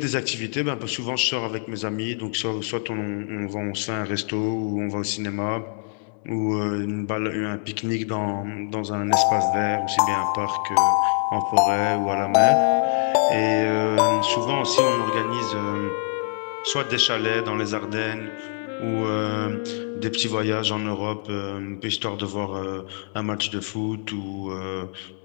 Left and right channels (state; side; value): silent; right; 55 dB below the other